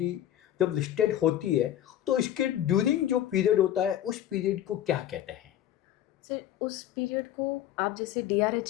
जब लिस्टेड होती है तो इसके ड्यूरिंग जो पीरियड होता है उस पीरियड को क्या कहते हैं? सर उस पीरियड को आप जैसे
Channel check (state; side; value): quieter; right; 11.8 dB